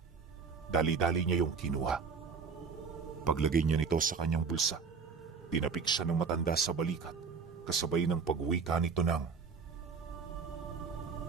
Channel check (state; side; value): quieter; left; 5.4 dB